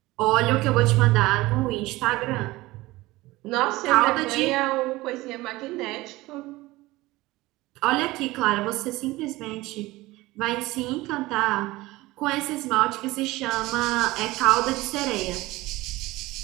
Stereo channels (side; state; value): left; quieter; 19.5 dB